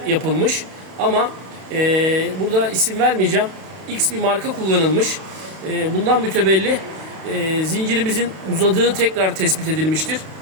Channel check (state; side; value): late; left; 32 ms